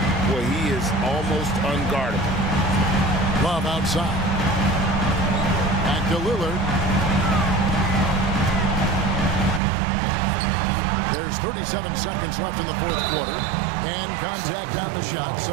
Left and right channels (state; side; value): drops out; left; at 9.6 s